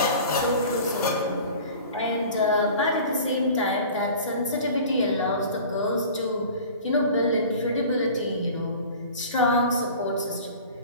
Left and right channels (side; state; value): both; inverted; correlation -0.41